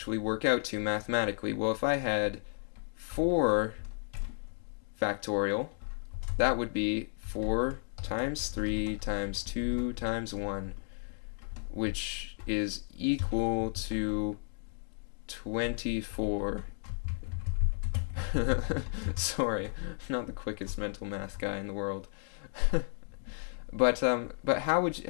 work out to mathematically? Well, if I had 4 factorial, that would be 4 times 3 times 2 times 1, which is equal to 24. Sorry, I'm not the quickest mental math guy in the world. But how would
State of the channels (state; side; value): silent; right; digital silence